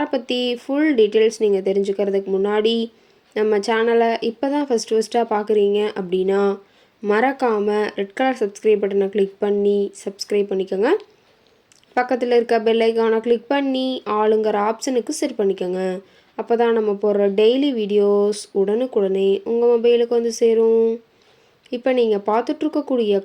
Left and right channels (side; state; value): both; identical; correlation 1.00